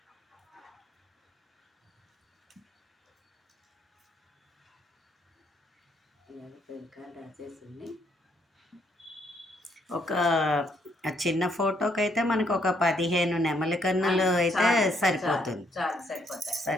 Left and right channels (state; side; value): normal; both; correlation 0.72